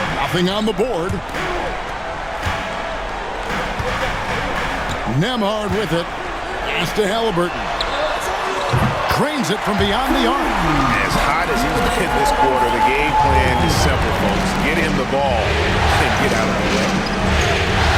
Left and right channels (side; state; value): both; identical; correlation 1.00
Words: Nothing on the board. Nembhard with it. Pass to Halliburton. Cranes it from beyond the arc. As hot as he's been this quarter, the game plan is simple, folks. Get him the ball and get out of the way.